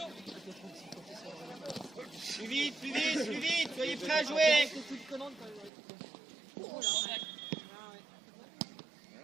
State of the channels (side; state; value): left; drops out; at 5.7 s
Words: Plus vite, plus vite, plus vite. Soyez prêts à jouer.